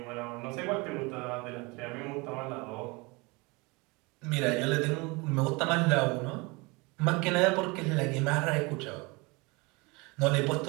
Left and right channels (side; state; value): left; quieter; 26.3 dB